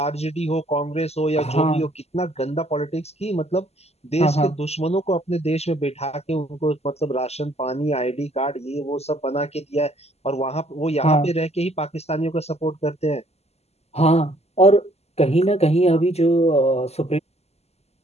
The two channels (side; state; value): right; late; 0.30 ms